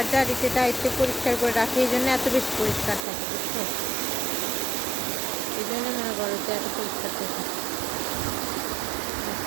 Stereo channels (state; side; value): drops out; left; at 3.0 s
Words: যার দায়িত্বে পরিষ্কার করে রাখে, এই জন্য এত বেশি পরিষ্কার থাকে, বুঝছো? এই জন্য মনে করো যে এত পরিষ্কার থাকে।